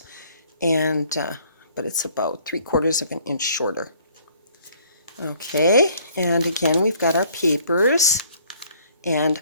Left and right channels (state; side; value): inverted; both; correlation -0.59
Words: And but it's about 3/4 of an inch shorter. Okay, and again we've got our papers